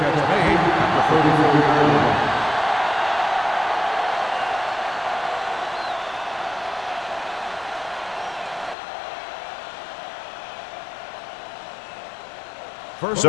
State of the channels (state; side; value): drops out; right; at 8.8 s